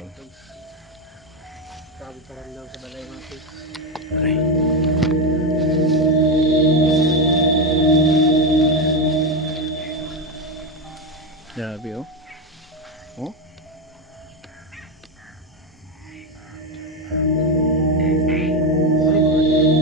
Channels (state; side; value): normal; both; correlation 0.10